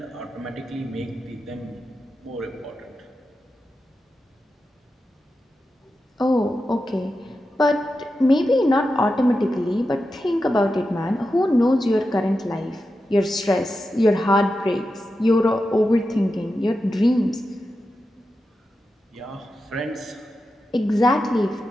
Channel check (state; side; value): normal; both; correlation 0.90